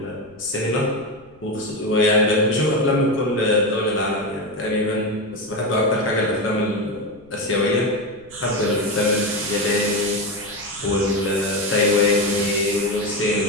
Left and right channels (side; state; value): left; noise; rumble, 27 dB below the sound